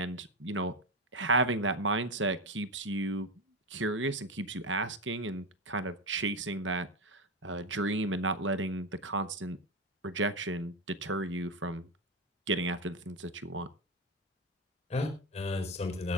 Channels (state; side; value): normal; both; correlation 0.14